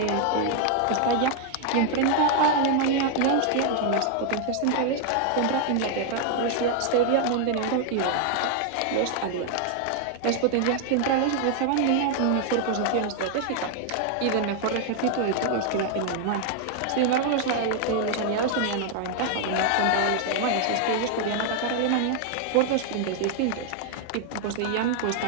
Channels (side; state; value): both; different; correlation 0.00